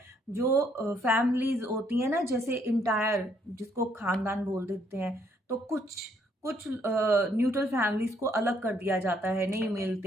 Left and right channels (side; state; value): both; normal; correlation 0.69